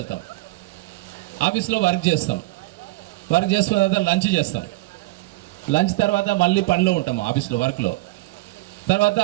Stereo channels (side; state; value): left; quieter; 20.6 dB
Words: ఆఫీస్లో వర్క్ చేస్తాం, వర్క్ చేసుకున్న తర్వాత లంచ్ చేస్తాం. లంచ్ తర్వాత మళ్ళీ పనిలో ఉంటాము ఆఫీస్లో వర్క్లో. తర్వాత